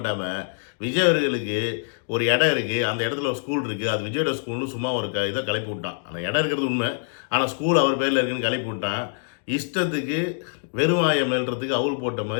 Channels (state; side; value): silent; right; digital silence